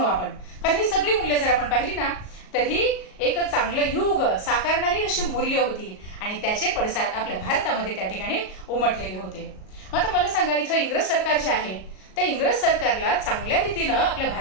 आपण, कारण ही सगळी मूल्य जर आपण पाहिली ना तर ही एक चांगलं युग साकारणारी अशी मूल्य होती आणि त्याचे पडसाद आपल्या भारतामध्ये त्या ठिकाणी उमटलेले होते. मग आता मला सांगा इथं इंग्रज सरकार जे आहे त्या इंग्रज सरकारला चांगल्या रीतीनं आपल्या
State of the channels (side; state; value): right; late; 38 ms